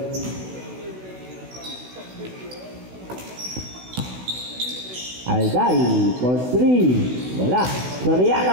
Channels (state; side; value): late; left; 16 ms